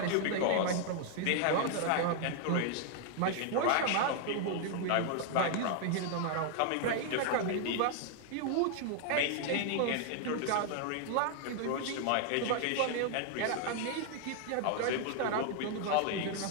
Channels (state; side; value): different; both; correlation 0.00